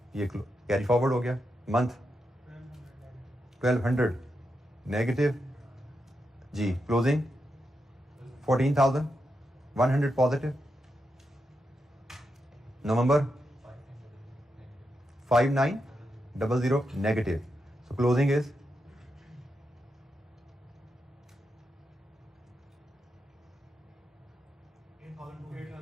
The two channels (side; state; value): both; normal; correlation 0.85